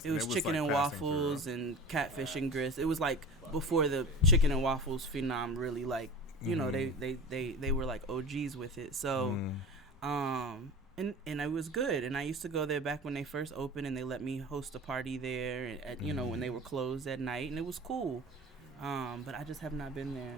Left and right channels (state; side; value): normal; both; correlation 0.35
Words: It was chicken and waffles and catfish and grits. It was like before the chicken and waffles phenom really like, you know, they were like OGs with it. So, and it was good. And I used to go there back when they first opened, and they let me host a party there at you know, when they were closed at night, and it was cool. But I just have not been there